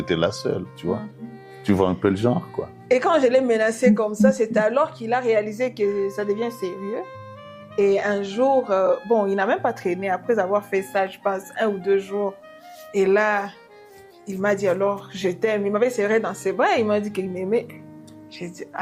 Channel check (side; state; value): both; identical; correlation 1.00